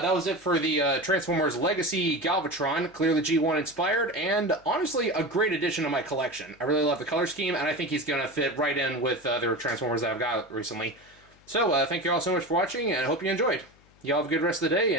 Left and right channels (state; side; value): noise; left; hum, 29 dB below the sound